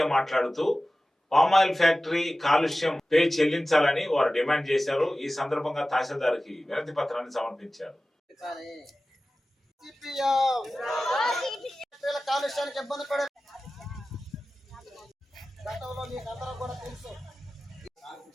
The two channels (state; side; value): normal; both; correlation 0.96